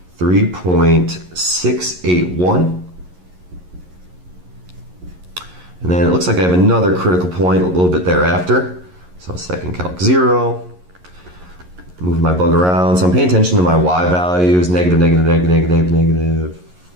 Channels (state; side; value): late; left; 11 ms